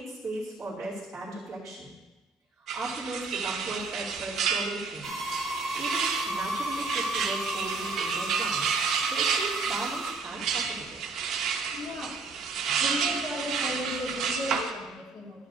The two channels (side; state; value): left; quieter; 4.0 dB